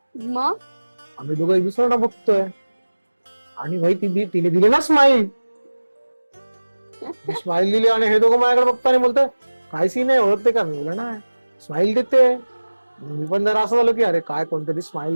मग आम्ही दोघं एक दुसऱ्यांना बघतोय आणि भाई तिने दिली ना स्माईल. स्माईल दिली आणि हे दोघं माझ्याकडे बघतो आणि बोलतोय काय सीन आहे, ओळखते का? मी बोला ना स्माईल देते. मी पण जरा असं झालं की अरे काय कोणतरी स्माईल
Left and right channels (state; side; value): inverted; both; correlation -1.00